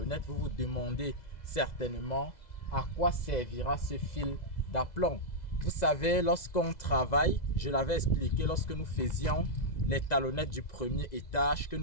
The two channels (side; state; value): right; late; 2.0 ms